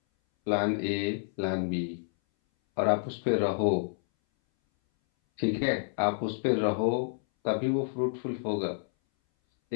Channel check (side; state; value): right; silent; 59 dB below the other